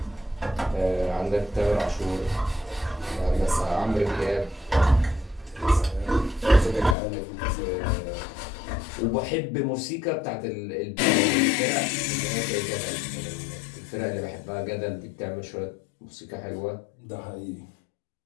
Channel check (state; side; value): drops out; right; at 7.0 s